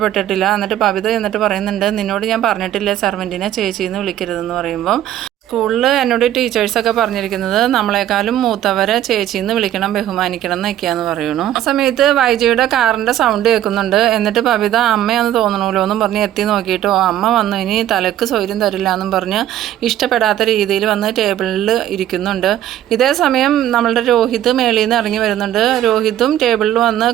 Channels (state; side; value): quieter; left; 12.0 dB